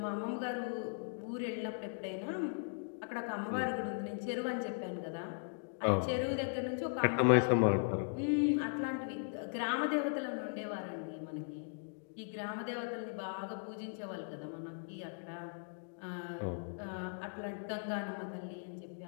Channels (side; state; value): right; silent; digital silence